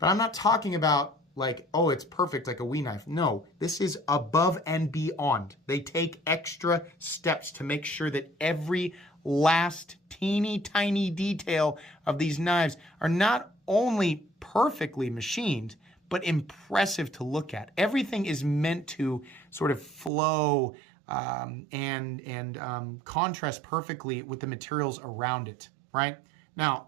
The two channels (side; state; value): left; drops out; at 20.1 s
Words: I'm not talking about like, oh, it's perfect like a Wii knife. No, this is above and beyond. They take extra steps to make sure that every last teeny tiny detail of these knives are not only perfectly machined, but impressive to look at. Everything is meant to sort of flow and contrast perfectly with the materials around it, right?